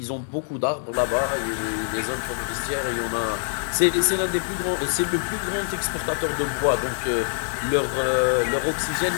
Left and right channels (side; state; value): right; silent; digital silence